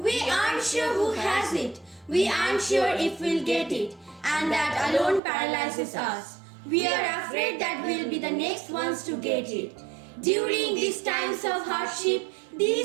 aren't sure who has it, we aren't sure if we'll get it, and that alone paralyzes us. We are afraid that we'll be the next ones to get it. During these times of hardship,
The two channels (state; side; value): drops out; left; at 5.2 s